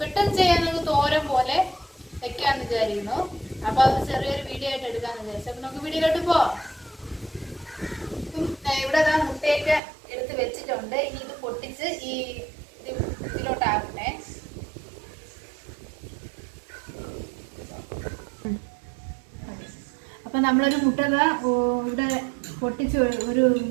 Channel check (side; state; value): left; drops out; at 9.8 s